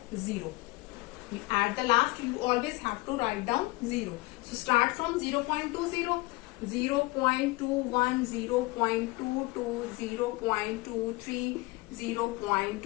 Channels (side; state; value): right; quieter; 22.9 dB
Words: 0. At the last you always have to write down 0. So start from 0.20, 0.21, 0.22, 0.23,